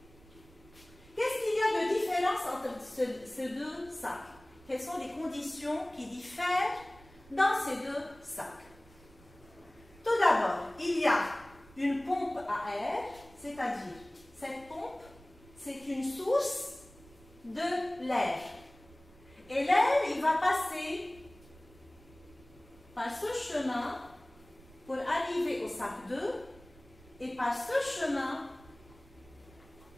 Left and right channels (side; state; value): right; noise; rumble, 24 dB below the sound